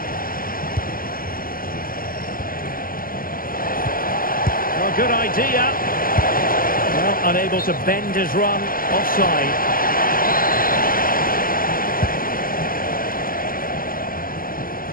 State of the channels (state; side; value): late; right; 0.42 ms